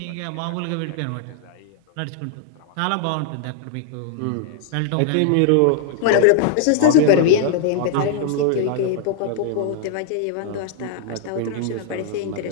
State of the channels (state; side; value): different; both; correlation 0.00